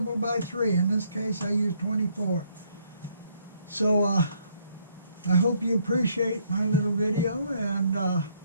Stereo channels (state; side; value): inverted; both; correlation -0.68